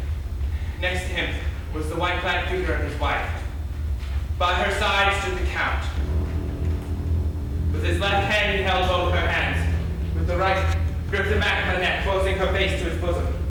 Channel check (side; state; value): both; identical; correlation 1.00